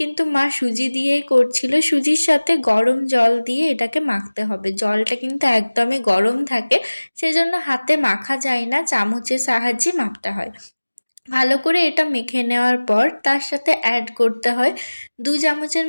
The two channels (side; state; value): both; inverted; correlation -1.00